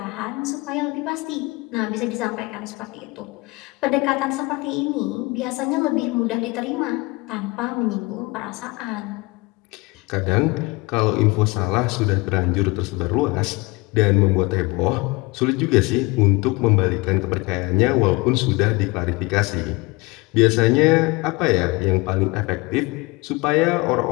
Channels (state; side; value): quieter; right; 24.8 dB